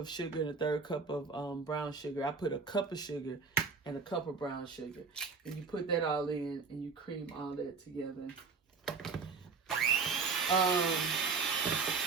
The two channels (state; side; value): quieter; left; 4.8 dB